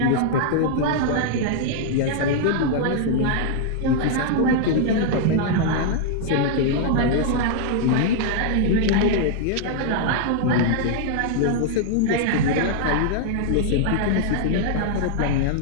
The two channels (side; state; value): both; different; correlation -0.01